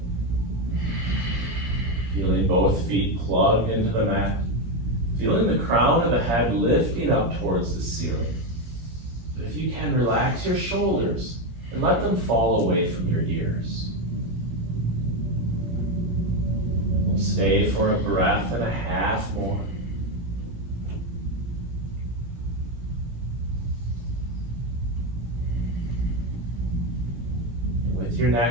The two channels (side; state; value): left; late; 17 ms